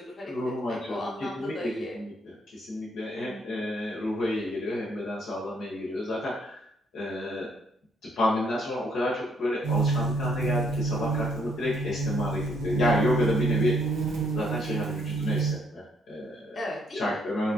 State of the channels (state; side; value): normal; both; correlation 0.70